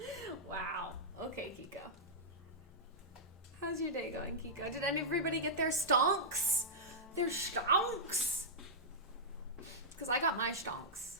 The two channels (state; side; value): normal; both; correlation -0.11